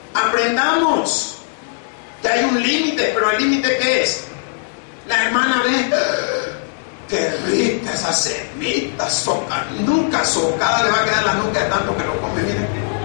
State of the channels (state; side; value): silent; right; digital silence